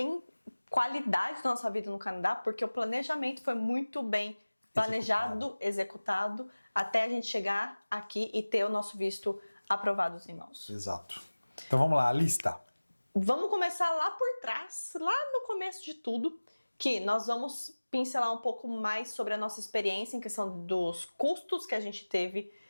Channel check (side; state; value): both; inverted; correlation -1.00